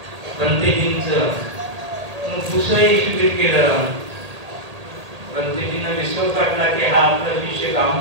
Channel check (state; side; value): late; left; 1.8 ms